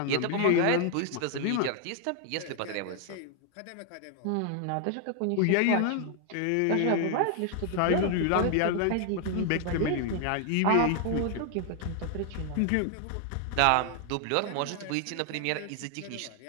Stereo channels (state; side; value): different; both; correlation 0.00